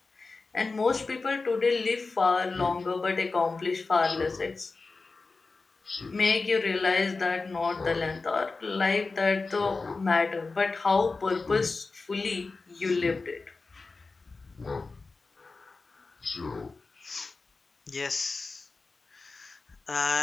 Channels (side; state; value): right; quieter; 3.9 dB